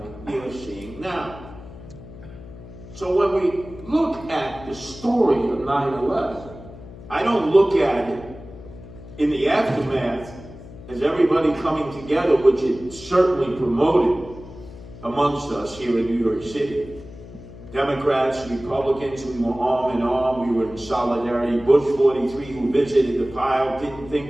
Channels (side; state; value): left; noise; hum, 16 dB below the sound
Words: we are seeing now. So when we look at the story of 9/11, I don't look at it in the aftermath as everybody coming together, which it certainly promoted amongst us here in New York City. Democrats, Republicans, we were arm in arm, we were in solidarity. Bush 43, who visited the pile, didn't